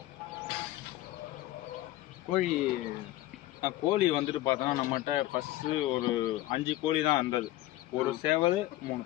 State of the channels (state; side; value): quieter; right; 16.0 dB